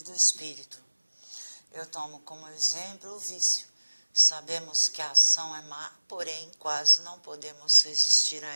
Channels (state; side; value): inverted; both; correlation -1.00